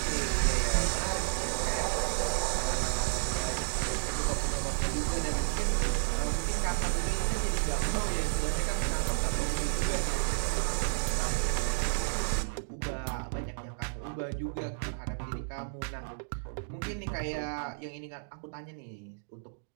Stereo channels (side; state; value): left; silent; digital silence